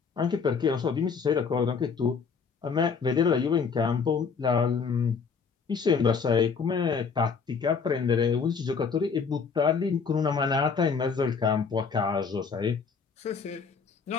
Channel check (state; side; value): quieter; right; 5.7 dB